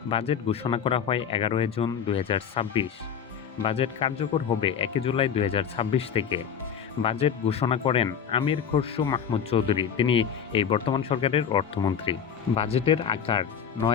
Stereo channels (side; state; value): right; quieter; 7.8 dB